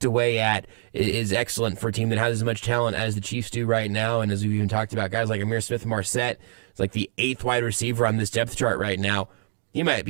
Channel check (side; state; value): left; silent; digital silence